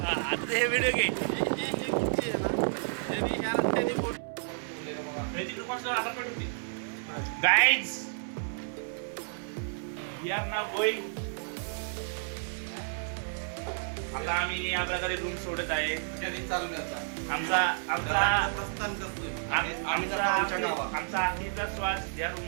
आता हे व्हिडिओ घे. Guys we are now going. आता आम्ही या प्रकारे रूम सोडत आहे. आमचा आखरीचा श्वास या रूम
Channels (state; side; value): silent; left; 57 dB below the other